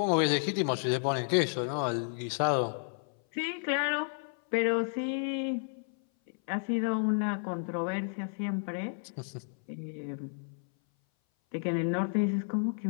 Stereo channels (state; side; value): silent; right; 57 dB below the other